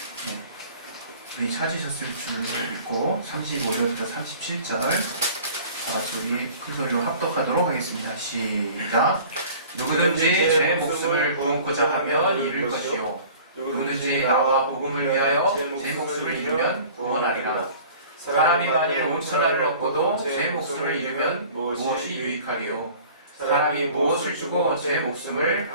네. 우리 찾으셨을 줄 믿고 35절부터 37절 다같이 우리 큰소리로 합독하도록 하겠습니다. 시작. 누구든지 제 목숨을 구원코자 하면 잃을 것이요 누구든지 나와 복음을 위하여 제 목숨을 잃으면 구원하리라. 사람이 만일 온 천하를 얻고도 제 목숨을 잃으면 무엇이 유익하리요? 사람이 무엇을 주고 제 목숨을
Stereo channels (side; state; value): both; inverted; correlation -0.46